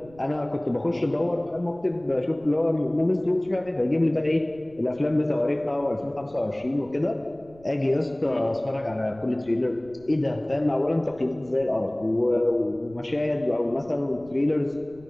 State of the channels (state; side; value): noise; right; rumble, 24 dB below the sound